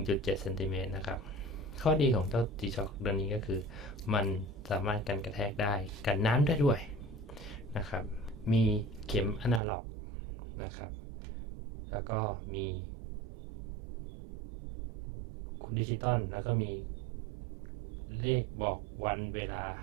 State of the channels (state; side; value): drops out; left; at 9.6 s